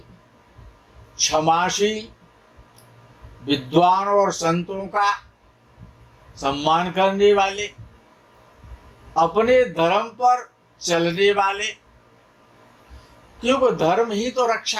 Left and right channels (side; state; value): both; identical; correlation 1.00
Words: क्षमाशील, विद्वान और संतों का सम्मान करने वाले, अपने धर्म पर चलने वाले, क्योंकि धर्म ही तो